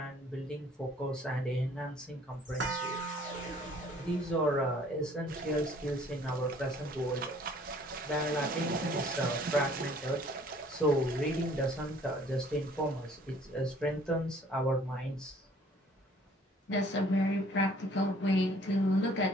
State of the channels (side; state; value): both; normal; correlation 0.56